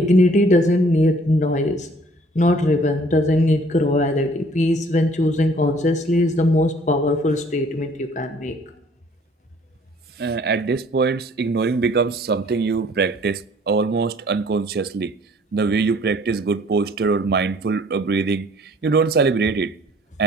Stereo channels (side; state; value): both; normal; correlation 0.57